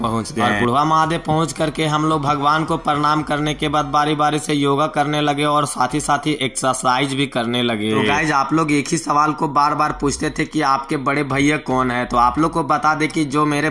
गए। और बुढ़वा महादेव पहुंच करके हम लोग भगवान को प्रणाम करने के बाद बारी बारी से योगा करने लगे और साथ ही एक्सरसाइज भी करने लगे। तो गाइज आप लोग एक ही सवाल को बार बार पूछते थे कि आपके बड़े भैया कौन है, तो आप लोग को बता दे कि जो मेरे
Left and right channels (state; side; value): identical; both; correlation 1.00